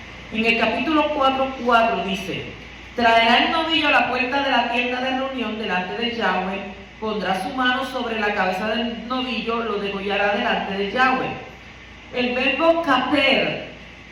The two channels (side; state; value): both; identical; correlation 1.00